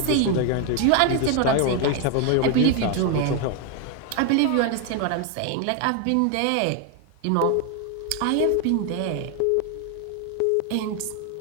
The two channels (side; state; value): both; different; correlation 0.01